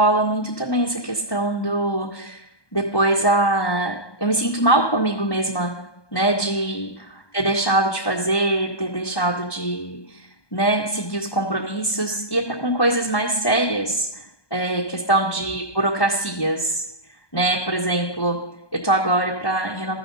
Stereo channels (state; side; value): late; right; 1.2 ms